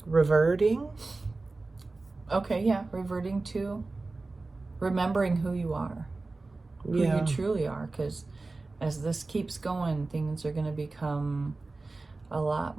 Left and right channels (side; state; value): left; quieter; 3.4 dB